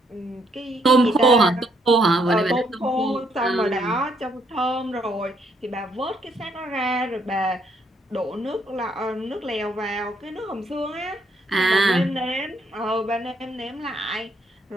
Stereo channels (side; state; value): both; normal; correlation 0.72